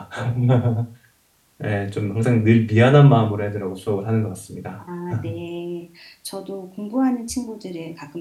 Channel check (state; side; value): identical; both; correlation 1.00